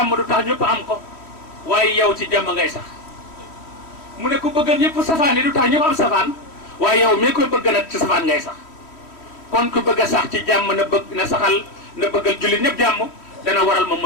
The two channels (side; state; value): right; late; 3.1 ms